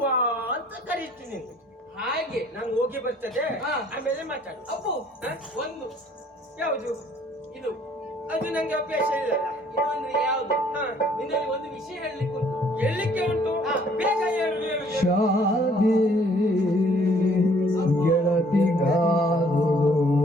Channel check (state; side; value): normal; both; correlation 0.60